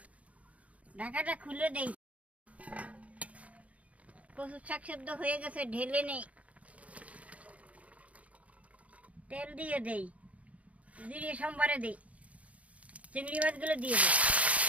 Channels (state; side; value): late; left; 0.067 ms